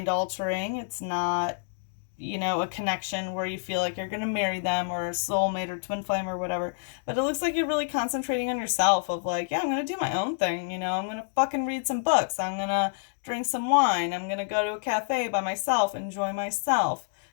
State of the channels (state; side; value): silent; right; digital silence